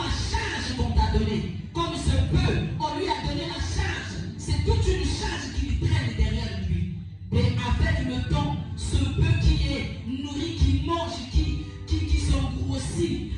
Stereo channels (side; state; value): both; identical; correlation 1.00